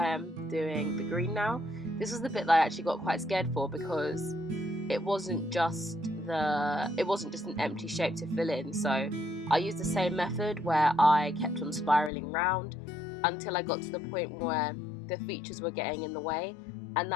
am doing the green now. This was the bit that I actually got quite scared for, because it wasn't just an empty shape to fill in. So I used the same method where I kept on spiraling round until I got to the point where the features were getting in the way, and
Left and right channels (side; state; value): right; drops out; at 12.1 s